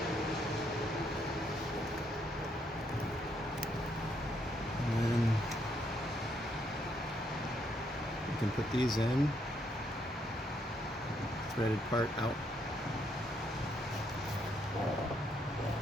You can put these in, threaded part out.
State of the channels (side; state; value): both; normal; correlation 0.74